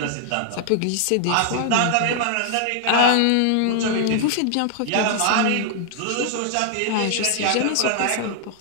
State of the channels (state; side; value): different; both; correlation 0.00